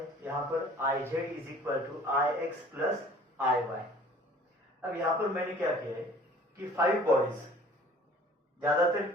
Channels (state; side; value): normal; both; correlation 0.50